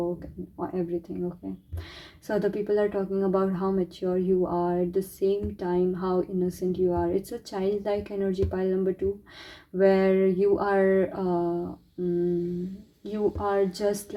and everything. Okay, so other people are talking about how mature you are, at the same time how innocent you are. It's a childlike energy, pile number 2, where you are just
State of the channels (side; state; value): both; identical; correlation 1.00